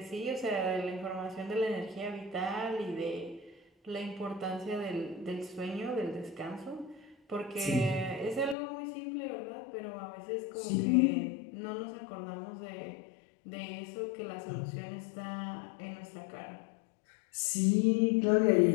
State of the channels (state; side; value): drops out; right; at 8.6 s